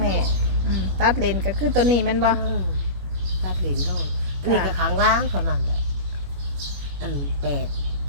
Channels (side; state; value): left; late; 21 ms